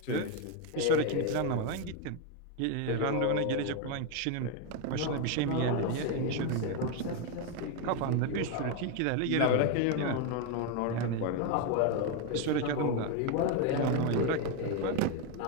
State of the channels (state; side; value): different; both; correlation 0.02